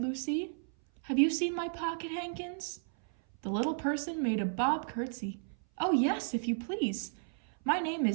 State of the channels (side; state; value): left; silent; 55 dB below the other